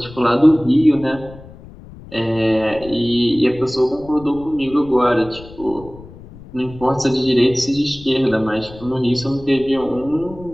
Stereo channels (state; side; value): noise; left; rumble, 18 dB below the sound